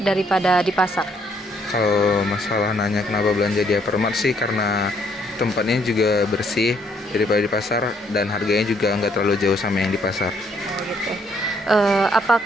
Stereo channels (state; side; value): normal; both; correlation 0.69